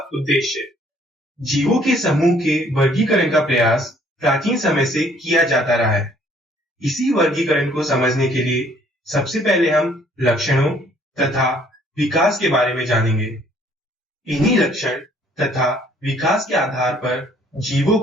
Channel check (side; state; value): both; normal; correlation 0.61